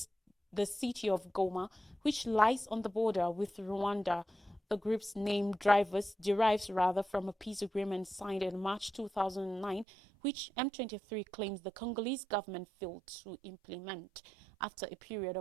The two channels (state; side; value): drops out; left; at 9.9 s